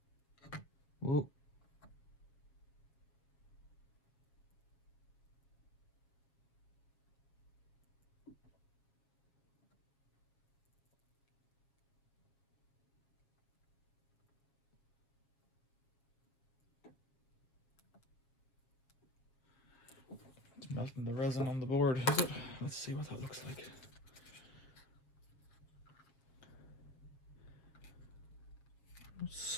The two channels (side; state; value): right; late; 7.1 ms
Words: Whoa. melting the resin on the board, is it? Let's see what that looks like. It's